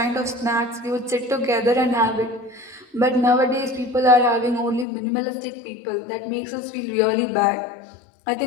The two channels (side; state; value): right; drops out; at 4.9 s